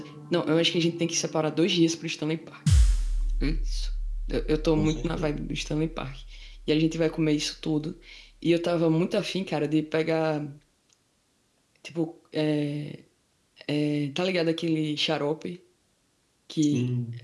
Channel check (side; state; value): both; identical; correlation 1.00